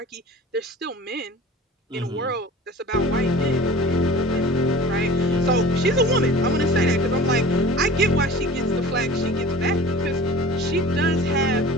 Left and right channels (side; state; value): both; normal; correlation 0.40